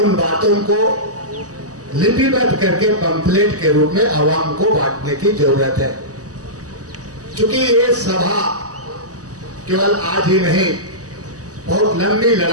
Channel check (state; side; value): late; left; 0.67 ms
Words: बातों को लिपिबद्ध करके पंफलेट के रूप में आवाम को बांटने की जरूरत है। क्योंकि ये सभा केवल आज ही नहीं, बहुत लंबी